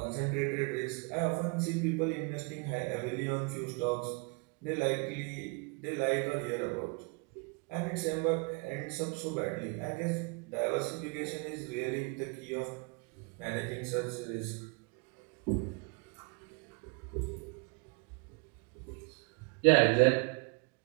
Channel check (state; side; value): quieter; left; 31.7 dB